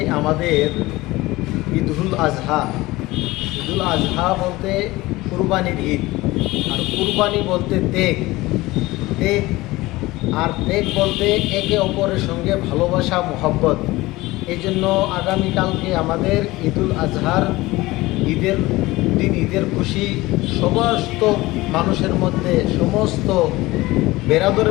আমাদের ঈদুল আজহা। ঈদুল আজহা বলতে কুরবানির ঈদ, আর কুরবানি বলতে ত্যাগ। আর ত্যাগ বলতে একে অপরের সঙ্গে ভালোবাসা, মোহব্বত। এই জন্য আগামীকালকে আমাদের ঈদুল আজহার ঈদের দিন, ঈদের খুশি সমস্ত মানুষের মধ্যে, সমস্ত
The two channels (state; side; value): quieter; right; 19.6 dB